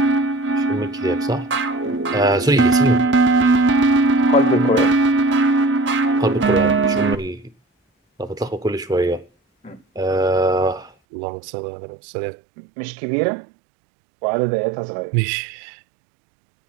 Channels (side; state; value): left; drops out; at 10.9 s